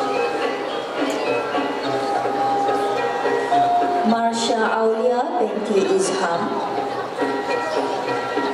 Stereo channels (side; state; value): both; identical; correlation 1.00